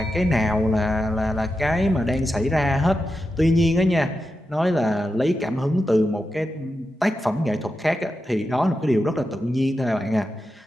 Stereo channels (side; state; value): both; normal; correlation 0.89